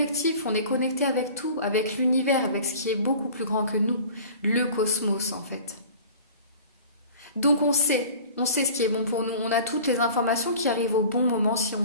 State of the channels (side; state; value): both; inverted; correlation -0.43